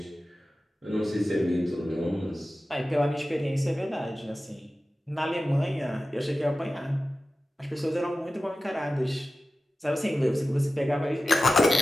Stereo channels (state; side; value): normal; both; correlation 0.95